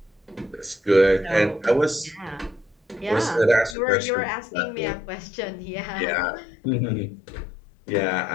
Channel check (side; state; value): right; drops out; at 3.8 s